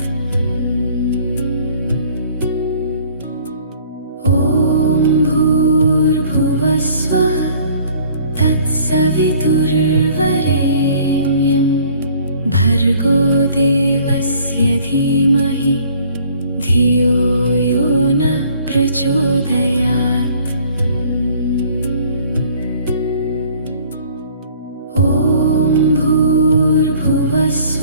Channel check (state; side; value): inverted; both; correlation -0.55